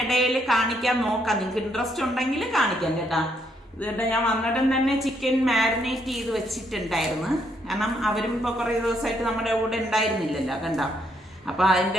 കാണിക്കാൻ നോക്കാം. നിങ്ങൾക്ക് ഇൻട്രസ്റ്റ് ഉണ്ടെങ്കിൽ കാണിക്കാം കേട്ടാ. ഇതുകൊണ്ട് ഞാൻ വന്നിട്ടും തന്നെ ചിക്കൻ മാരിനേറ്റ് ചെയ്ത് വെച്ചിട്ടുണ്ടായിരുന്നു. കാരണം അവരും ഇപ്പോൾ കുറേ ദിവസമായിട്ട് നമ്മുടെ കൂടെ ഉണ്ടായിരുന്നില്ലല്ലോ കണ്ടോ. അപ്പൊ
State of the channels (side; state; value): both; normal; correlation 0.73